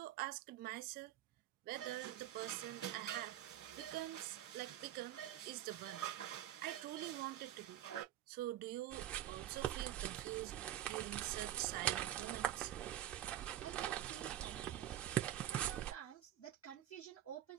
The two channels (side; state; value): left; quieter; 12.4 dB